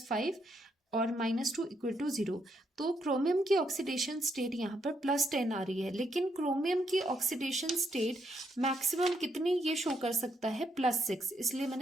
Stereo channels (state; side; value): normal; both; correlation 0.76